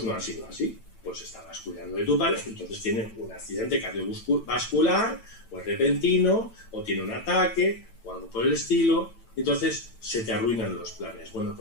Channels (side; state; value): right; late; 9.0 ms